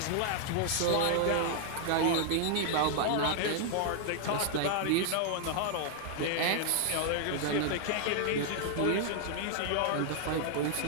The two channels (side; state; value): both; different; correlation 0.00